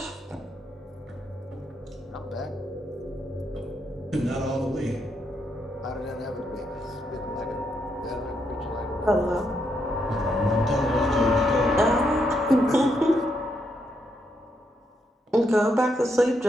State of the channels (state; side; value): normal; both; correlation 0.78